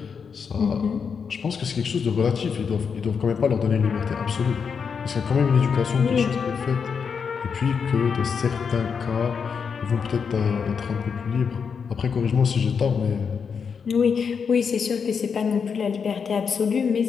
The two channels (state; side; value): quieter; right; 6.2 dB